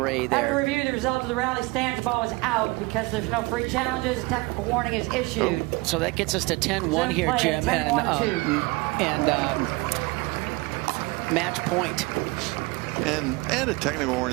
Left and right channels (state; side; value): quieter; left; 24.6 dB